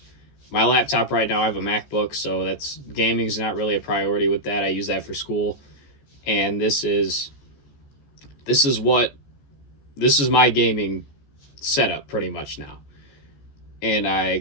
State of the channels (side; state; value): right; late; 14 ms